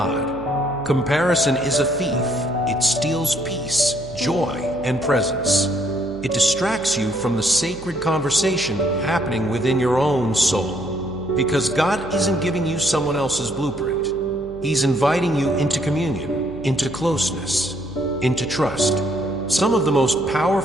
Comparison is a thief. It steals peace, joy, and presence. It distracts you from the sacred conversation happening within your own soul. Because God isn't giving you someone else's blueprint. He's inviting you into communion, into closeness, into trust. Some of the most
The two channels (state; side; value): noise; right; hum, 18 dB below the sound